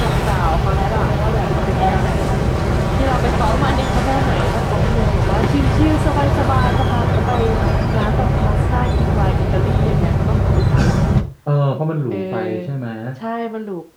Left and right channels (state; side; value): identical; both; correlation 1.00